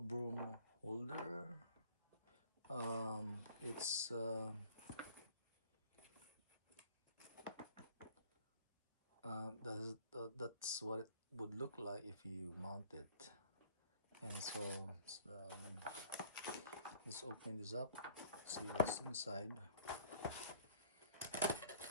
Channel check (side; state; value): both; inverted; correlation -0.54